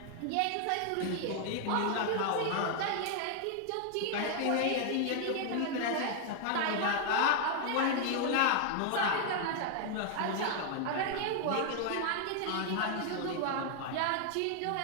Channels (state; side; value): different; both; correlation 0.00